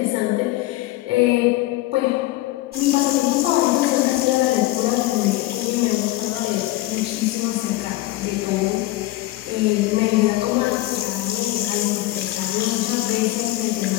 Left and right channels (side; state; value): right; quieter; 17.4 dB